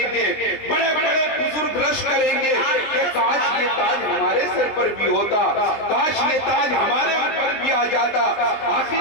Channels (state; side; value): late; right; 20 ms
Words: گے، بڑے بڑے بزرگ رش کریں گے کہ کاش یہ تاج ہمارے سر پر بھی ہوتا، کاش یہ تاج ہمارے اوپر بھی آ جاتا۔ آخر